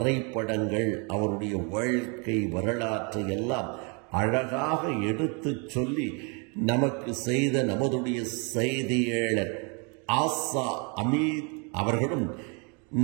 அவருடைய வாழ்க்கை வரலாற்றை எல்லாம் அழகாக எடுத்து சொல்லி நமக்கு செய்த நமதுடைய செய்தியாளர் ஆசா அமீத் அவர்களும்,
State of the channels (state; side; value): quieter; left; 34.2 dB